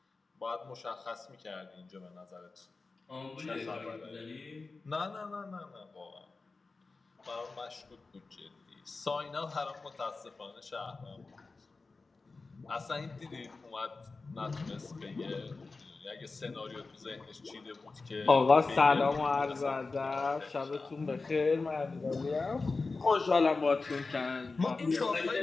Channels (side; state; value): right; quieter; 3.9 dB